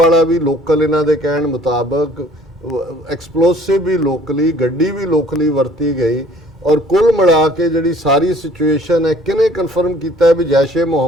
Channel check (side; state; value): both; normal; correlation 0.55